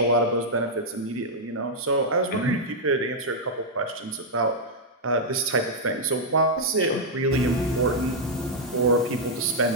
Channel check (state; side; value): normal; both; correlation -0.05